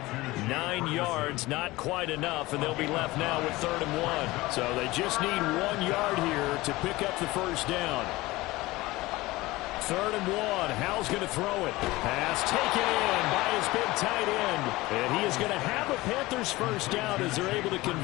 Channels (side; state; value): right; quieter; 19.8 dB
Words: 9 yards, not quite enough, and they'll be left now with 3rd and 1. So they just need 1 yard here to pick up the first down. 3rd and 1. Howell's going to throw it. Pass taken in by his big tight end. And he is going to have a Panthers first down as they're able to